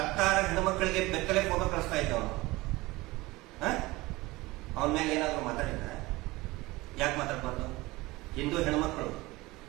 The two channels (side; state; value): left; quieter; 20.8 dB